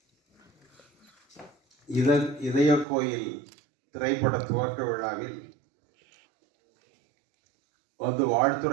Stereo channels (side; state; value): left; drops out; at 2.9 s